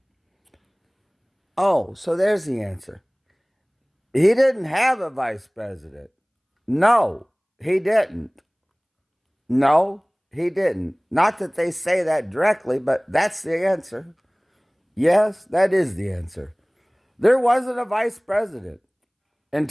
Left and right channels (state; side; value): identical; both; correlation 1.00